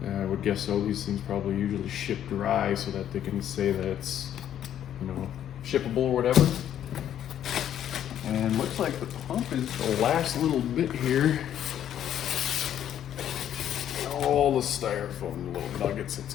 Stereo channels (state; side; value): quieter; right; 10.5 dB